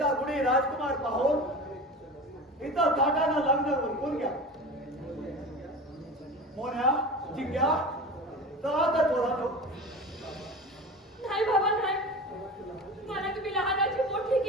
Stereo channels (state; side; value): normal; both; correlation 0.32